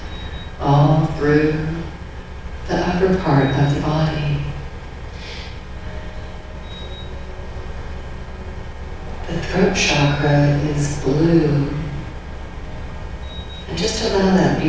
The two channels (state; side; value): identical; both; correlation 1.00